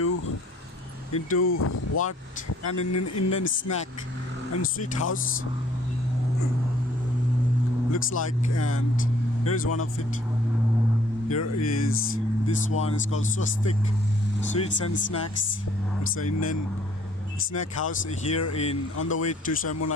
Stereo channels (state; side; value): normal; both; correlation 0.60